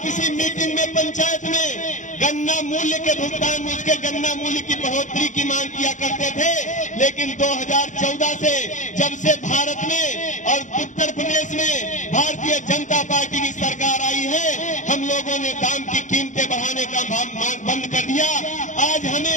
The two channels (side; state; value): right; late; 0.36 ms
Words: इसी मीटिंग में पंचायत में गन्ना मूल्य के भुगतान, उसके गन्ना मूल्य की बढ़ोतरी की मांग किया करते थे। लेकिन 2014 से जब से भारत में और उत्तर प्रदेश में भारतीय जनता पार्टी की सरकार आई है, हम लोगों ने दाम की कीमतें बढ़ाने का मांग बंद कर दिया। आज हमें